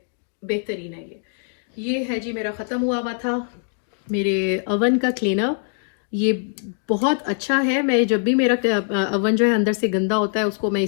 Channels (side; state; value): right; silent; 64 dB below the other